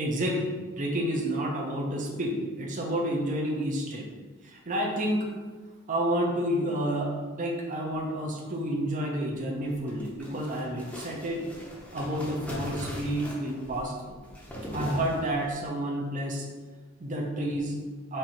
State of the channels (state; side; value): normal; both; correlation 0.47